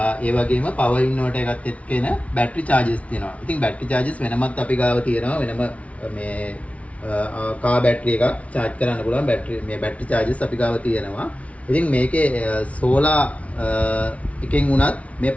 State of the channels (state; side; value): late; right; 0.065 ms